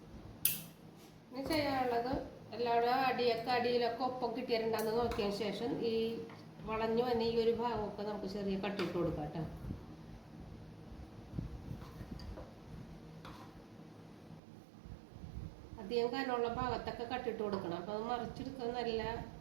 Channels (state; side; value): drops out; left; at 14.4 s